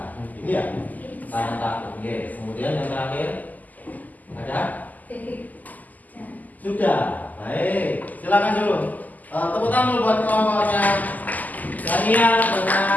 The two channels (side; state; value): right; late; 0.081 ms